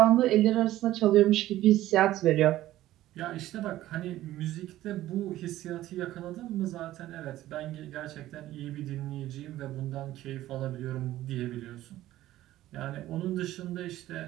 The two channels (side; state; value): left; quieter; 14.7 dB